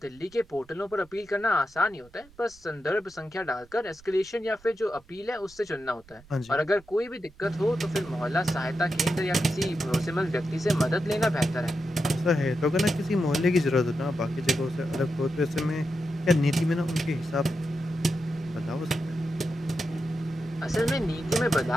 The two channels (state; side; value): noise; right; rumble, 26 dB below the sound